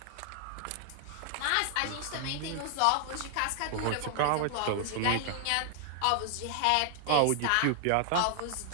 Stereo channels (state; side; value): different; both; correlation 0.00